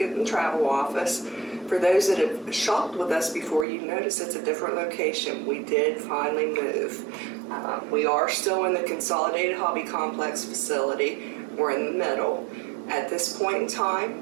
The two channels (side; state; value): left; drops out; at 3.7 s